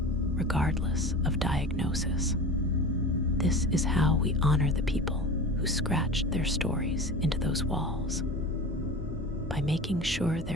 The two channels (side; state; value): both; normal; correlation 0.33